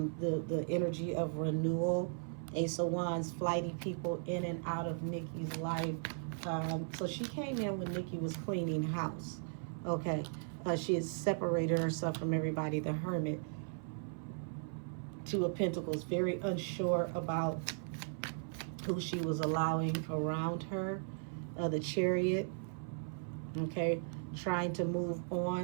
energy of renewal. Ace of Wands, flighty people in and out of Nikki's life. So she came in when Nikki was cleaning house. Okay. She had separated herself from everybody. The Hermit. Two of Pentacles. Very unsure about who she was allowing around her. The Chariot. Okay. Trying to move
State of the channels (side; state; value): left; silent; 53 dB below the other